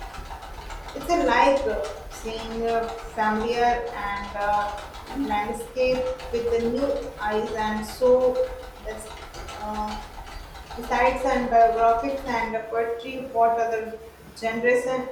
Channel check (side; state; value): both; identical; correlation 1.00